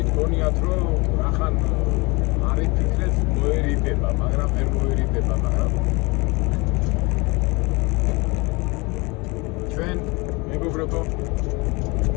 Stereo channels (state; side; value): quieter; right; 26.2 dB